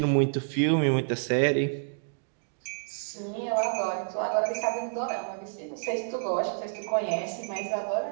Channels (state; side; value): silent; left; digital silence